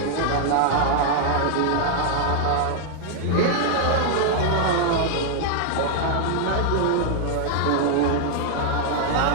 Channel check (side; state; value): both; different; correlation 0.00